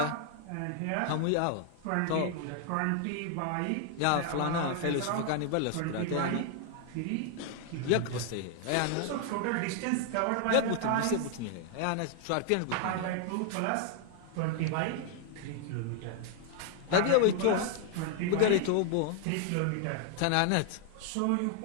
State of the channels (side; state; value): both; different; correlation 0.00